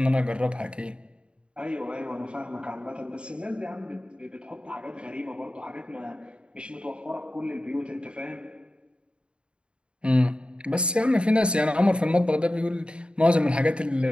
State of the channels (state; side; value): late; left; 0.055 ms